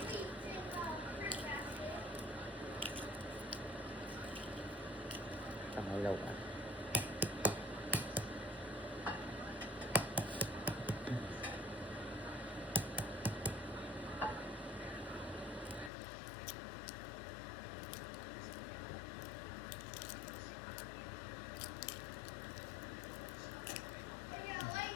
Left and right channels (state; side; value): drops out; right; at 15.9 s